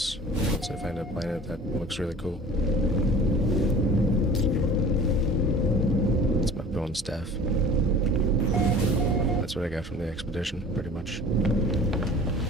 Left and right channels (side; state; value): both; normal; correlation 0.43